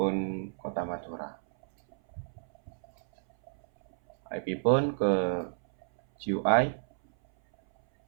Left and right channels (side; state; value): left; silent; 57 dB below the other